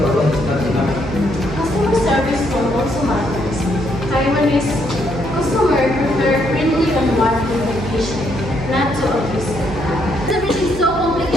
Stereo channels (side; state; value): right; noise; hum, 10 dB below the sound